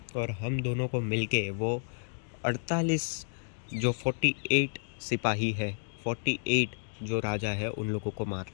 और हम दोनों को मिलके वो 48 जो 48 सिपाही है, 48 जो राजा है, उन लोगों को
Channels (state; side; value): silent; right; digital silence